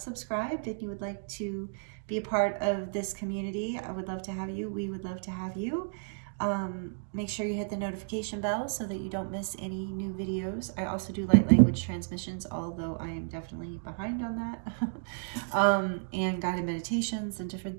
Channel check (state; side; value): silent; left; digital silence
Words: subscribed and you would like to be a part of this community. I would love to have you. We would love to have you. Make sure you hit the notification bell so that you don't miss any new videos. I also do light language transmissions, although I am definitely behind on that. And guided meditations and different